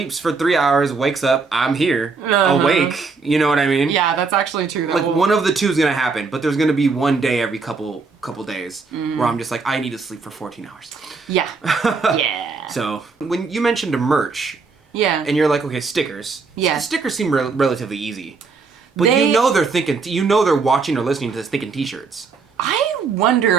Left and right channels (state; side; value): quieter; left; 4.6 dB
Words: for 3 hours, wakes up, I'm here, awake. You know what I mean? Yeah, that's actually true. Like, one of the two is going to happen, but there's going to be one day every couple days where I'm just like, I need to sleep for 14 hours. Yeah. Yeah. So, when you mentioned a merch, Yeah. and you're like, okay, stickers. Yeah. Stickers seem relatively easy. But They- you know they're thinking, they're watching or listening to this thinking t-shirts. I